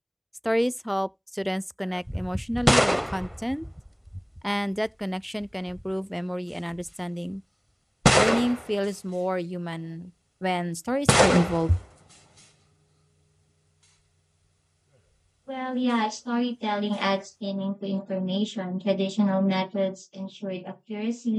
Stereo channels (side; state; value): both; identical; correlation 1.00